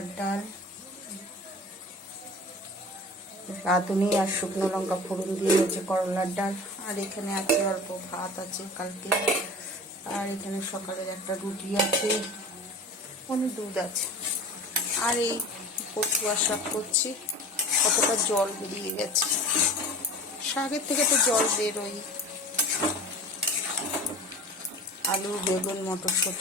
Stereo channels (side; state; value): both; normal; correlation 0.38